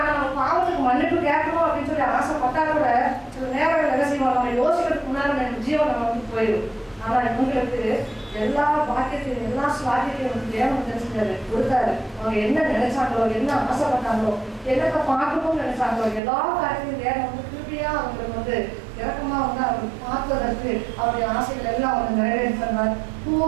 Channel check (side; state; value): left; drops out; at 16.2 s